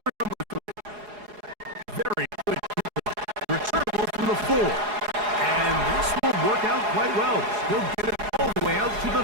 number 3. Very quick returnable from the 4. And this will work out quite well. He'll get it all the way out to the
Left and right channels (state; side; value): late; left; 4.8 ms